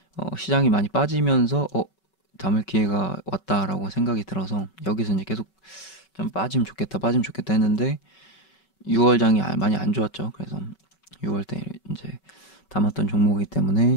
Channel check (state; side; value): late; right; 5.3 ms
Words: 시장이 많이 빠지면서 담을 기회가 왔다라고 생각이 들어서 여기서 이제 계속 좀 빠지면 좋겠다 했는데 6월장이 많이 안 좋았죠. 그래서 6월 때 이제 담았던 종목이기